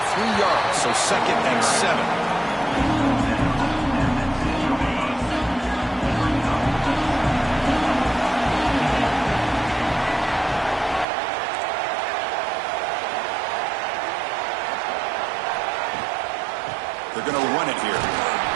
3 yards, so 2nd and 7. They're going to run it here.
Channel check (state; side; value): drops out; left; at 11.1 s